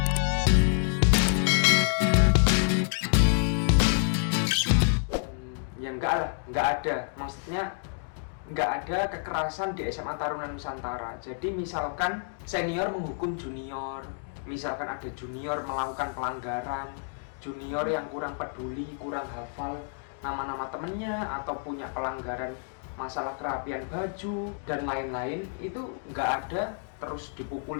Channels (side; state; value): right; silent; digital silence